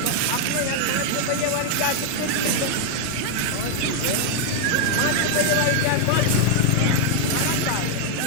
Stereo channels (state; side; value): different; both; correlation 0.00